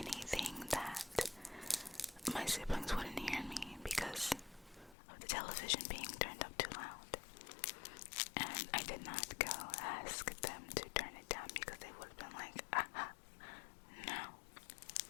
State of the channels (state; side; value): drops out; right; at 5.0 s